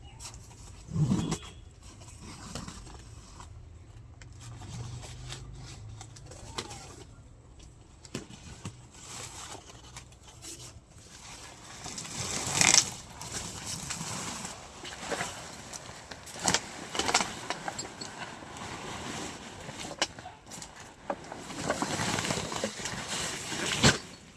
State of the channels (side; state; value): both; identical; correlation 1.00